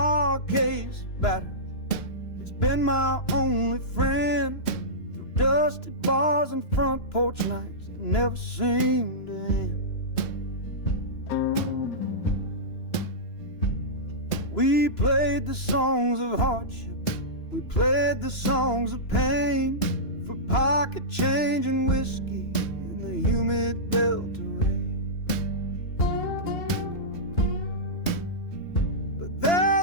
case battered, it's been my only friend through dusty bars and front porch nights that never seem to end. We played the songs of hardship, we played the songs of pain, for pocket change and whiskey in the humid Delta rain.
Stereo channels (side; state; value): right; late; 2.9 ms